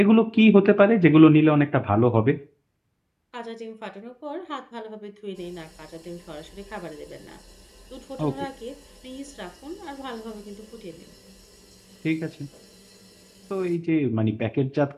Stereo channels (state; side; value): identical; both; correlation 1.00